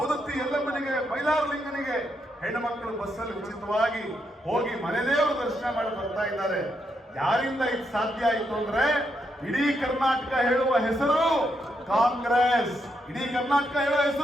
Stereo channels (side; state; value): both; normal; correlation 0.80